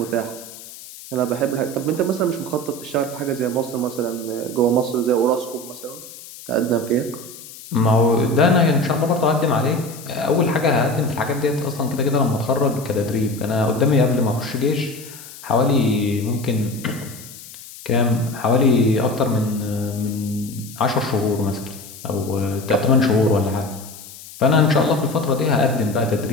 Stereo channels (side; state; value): left; noise; hiss, 16 dB below the sound